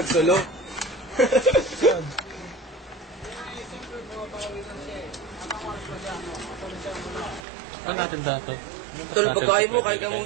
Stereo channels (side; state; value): left; drops out; at 7.5 s